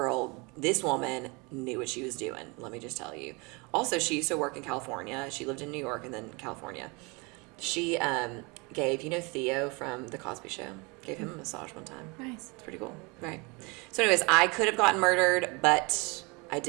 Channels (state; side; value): quieter; left; 28.2 dB